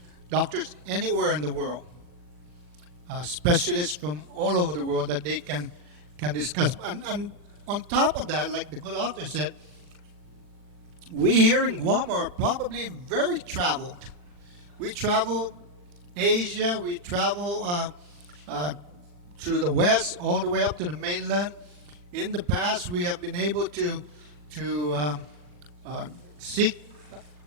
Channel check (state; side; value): late; left; 40 ms